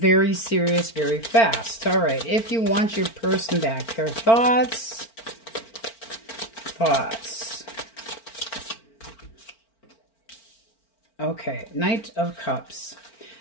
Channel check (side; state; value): right; late; 4.4 ms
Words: serious very fast. All right. If you want your person back, their thoughts. Okay. Knight of Cups.